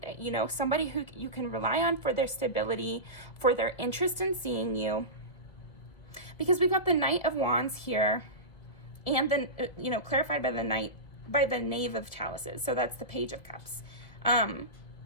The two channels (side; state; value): right; late; 2.1 ms